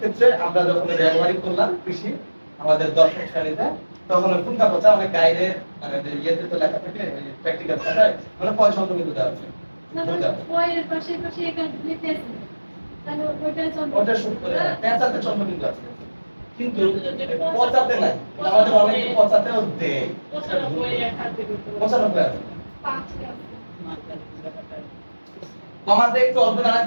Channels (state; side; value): inverted; both; correlation -1.00